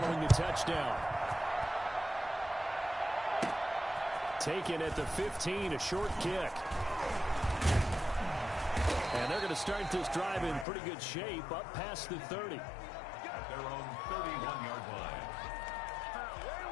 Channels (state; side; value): drops out; right; at 10.7 s